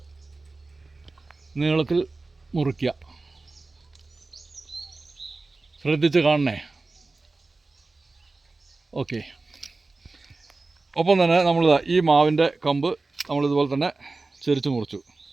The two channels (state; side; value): quieter; left; 3.5 dB